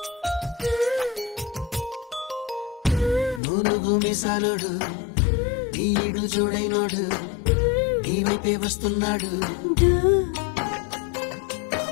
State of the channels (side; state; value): right; drops out; at 3.4 s